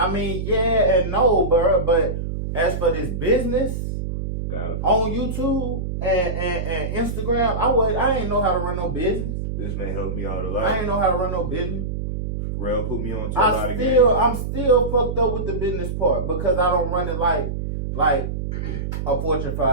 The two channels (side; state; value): right; noise; hum, 4 dB below the sound